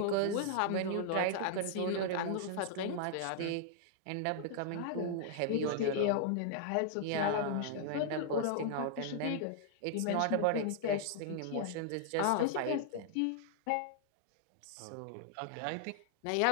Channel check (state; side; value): different; both; correlation -0.01